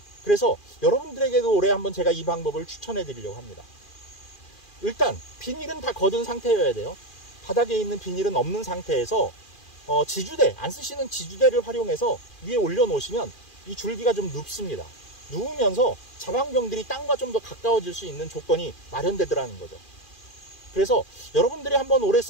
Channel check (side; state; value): right; late; 2.4 ms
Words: 그래서 여러분들에게도 올해 한번 제가 이 방법을 추천해 드리려고 합니다. 일단 비닐은 다 걷은 상태여야 돼요. 바닥에 있는 비닐은 없는 상태에서 지주대, 안 쓰시는 지주대를 활용해서 위에 올려 놓으시면 이 줄기가 좀 눕습니다. 누우면서 자방병들이 땅과 좀 더 가까워질 수 있는 조건이 마련되더라는 거죠. 그래서 여러분들이 한번 올해